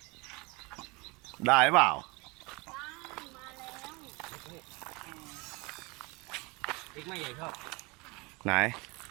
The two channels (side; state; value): left; quieter; 26.5 dB